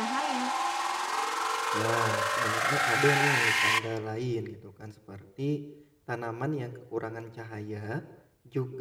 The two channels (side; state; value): both; identical; correlation 1.00